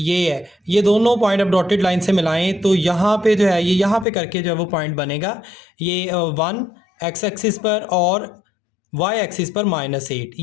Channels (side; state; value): right; drops out; at 4.0 s